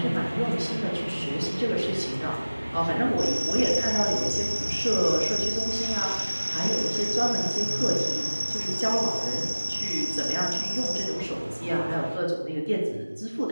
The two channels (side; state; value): both; inverted; correlation -1.00